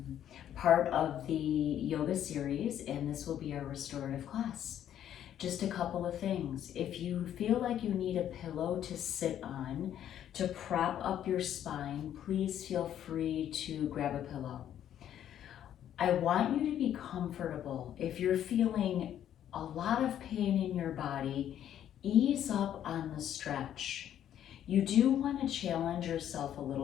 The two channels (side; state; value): right; quieter; 10.6 dB